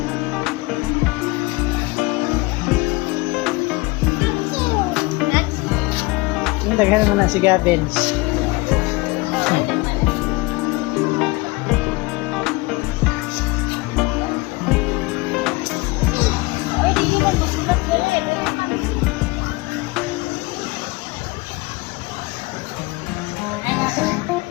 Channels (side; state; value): right; quieter; 23.7 dB